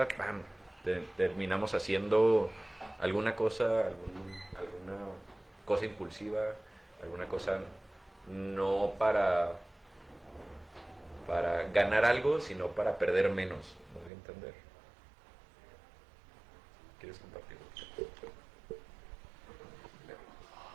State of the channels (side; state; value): left; drops out; at 14.1 s